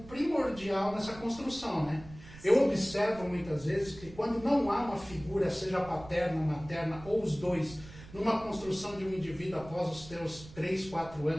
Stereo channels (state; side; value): noise; right; rumble, 18 dB below the sound